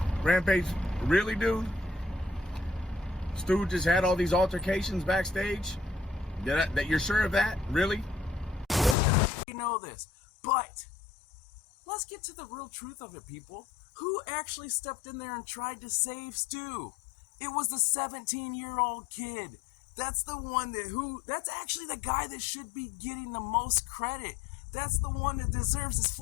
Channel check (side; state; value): right; drops out; at 9.0 s